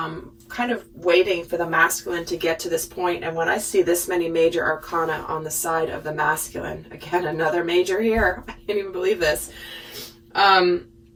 kind of waiting for the masculine to get to this point. And when I see this many major arcana on the side of the masculine, again, another major here. I can't even believe this.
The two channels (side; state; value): both; identical; correlation 1.00